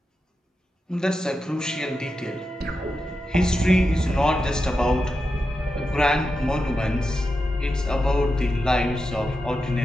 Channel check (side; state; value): both; normal; correlation 0.89